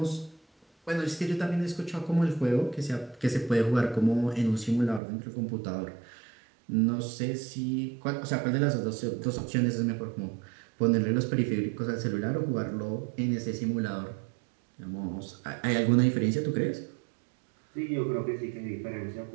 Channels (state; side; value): drops out; left; at 5.0 s